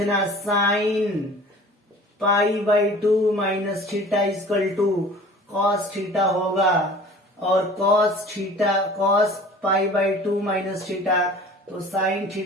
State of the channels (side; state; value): both; normal; correlation 0.45